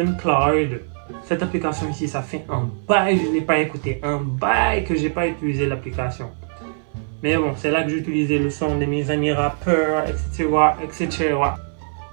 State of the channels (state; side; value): silent; left; 60 dB below the other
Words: Cette application ici, ça fait un bail, je ne l'ai pas écouté. Un bail que je n'ai pas utilisé l'application. Mais bon, c'est là que j'ai utilisé le son de mes amis rappeurs, etc.